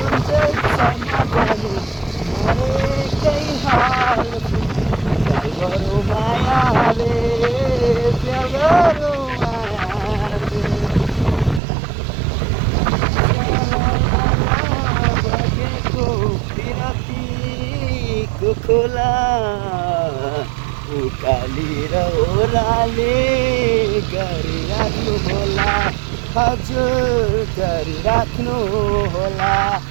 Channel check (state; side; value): drops out; left; at 11.6 s